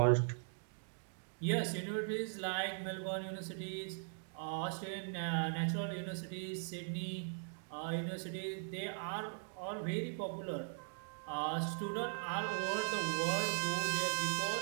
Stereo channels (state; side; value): silent; left; digital silence